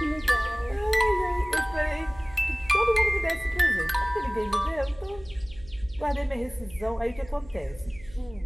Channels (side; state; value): right; noise; hum, 20 dB below the sound